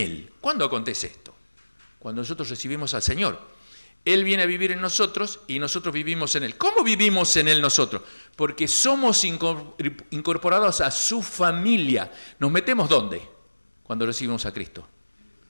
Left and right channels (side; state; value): both; inverted; correlation -1.00